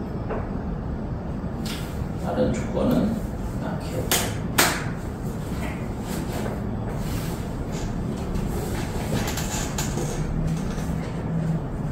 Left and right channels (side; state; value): both; identical; correlation 1.00